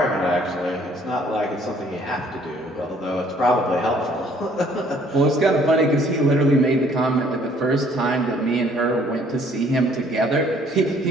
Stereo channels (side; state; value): both; normal; correlation 0.60